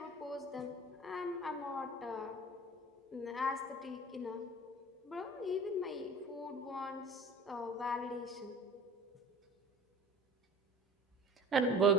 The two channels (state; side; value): normal; both; correlation 0.43